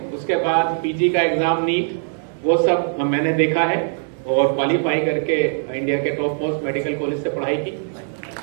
उसके बाद पीजी का एग्जाम नीट, वो सब मैंने देखा है और क्वालिफाई करके इंडिया के टॉप मोस्ट मेडिकल कॉलेज से पढ़ाई की।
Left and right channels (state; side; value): silent; left; digital silence